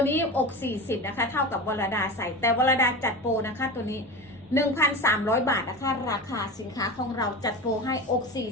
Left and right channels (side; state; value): both; normal; correlation 0.27